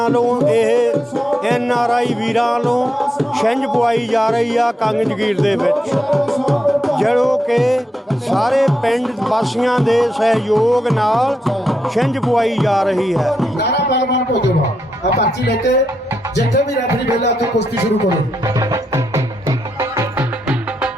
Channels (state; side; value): normal; both; correlation 0.83